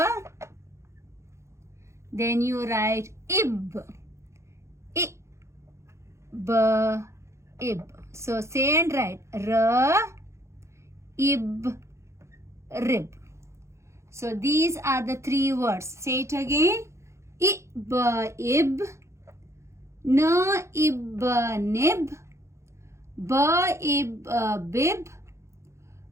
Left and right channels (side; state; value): left; late; 0.14 ms